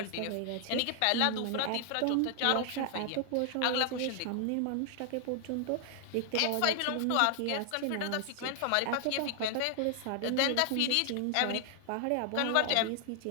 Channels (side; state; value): both; different; correlation 0.00